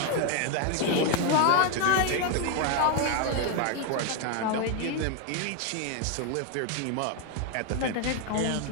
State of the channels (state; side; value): different; both; correlation 0.01